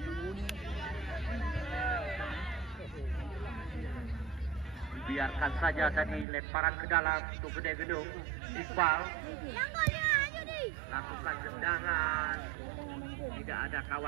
Biarkan saja tadi lemparan ke dalam untuk gede gedung. Iqbal lakukan tendangan, tidak ada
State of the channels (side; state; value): left; drops out; at 6.2 s